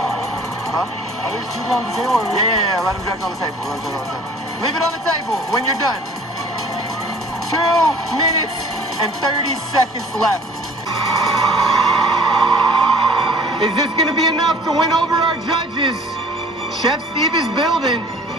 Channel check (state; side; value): normal; both; correlation 0.50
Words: Are these two on the table? Yeah, let him drag on the table. Leave it on the table when you're done. 2 minutes and 30 seconds left. Is this going to be enough to win over our judges? Chef Steve is building.